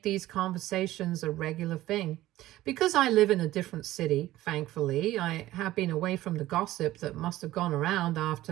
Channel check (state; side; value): quieter; left; 15.7 dB